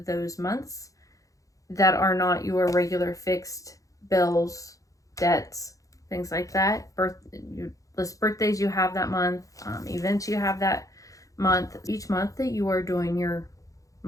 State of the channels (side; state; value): right; late; 0.16 ms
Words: months that are not your regular fixed bills, debts, things like that. You list birthdays you have that month, events you have that month. Each month that you are doing your